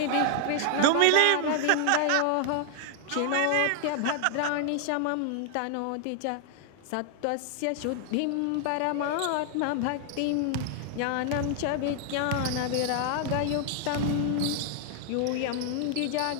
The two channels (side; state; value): both; different; correlation 0.00